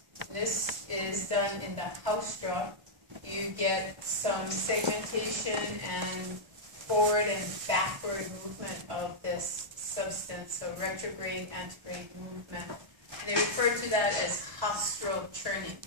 This is done in the haustra. You get some segmentation and forward and backward movement of this substance, so retrograde, antegrade movement. And they refer to that as haustral churning,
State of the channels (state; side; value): late; left; 1.3 ms